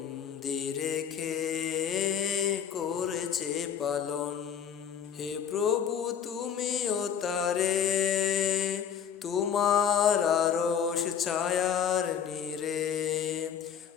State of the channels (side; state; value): right; quieter; 8.1 dB